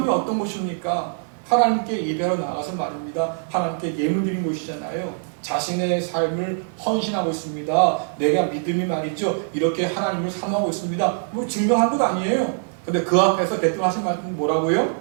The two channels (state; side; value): silent; left; digital silence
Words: 어떤 곳입니까? 하나님께 예배하러 나가서 말입니다. 하나님께 예물 드린 곳이잖아요. 자신의 삶을 헌신하고 있습니다. 내가 믿음이 말이죠. 이렇게 하나님을 사모하고 있습니다. 뭐 증명한 것 아니에요. 근데 그 앞에서 대뜸 하신 말씀은